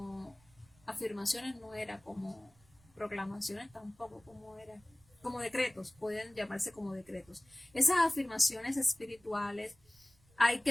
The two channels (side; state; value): right; noise; rumble, 29 dB below the sound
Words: afirmaciones, no era como proclamaciones tampoco, como era como decretos, pueden llamarse como decretos. Esas afirmaciones espirituales hay